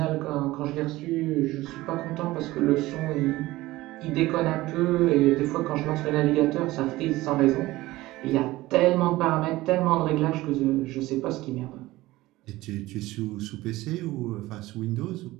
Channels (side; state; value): left; quieter; 18.2 dB